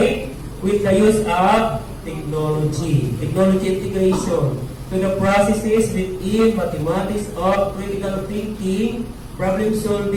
with the use of technology integration to the processes within mathematics of critical thinking, problem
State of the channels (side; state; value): both; identical; correlation 1.00